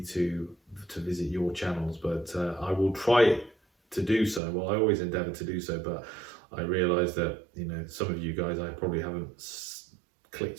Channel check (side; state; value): left; drops out; at 4.4 s